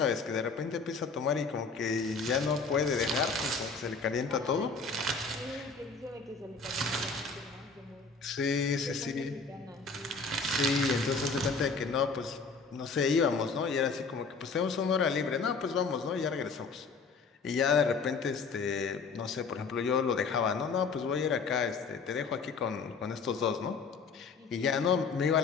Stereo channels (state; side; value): quieter; right; 4.7 dB